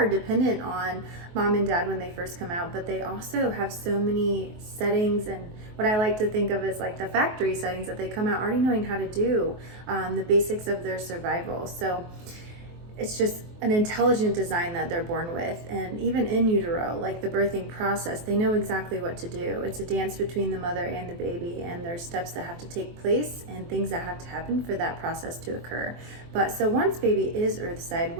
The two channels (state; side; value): late; left; 23 ms